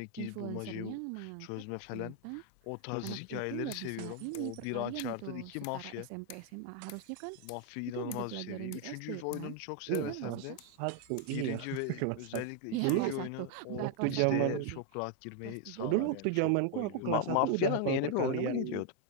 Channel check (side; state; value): both; different; correlation 0.01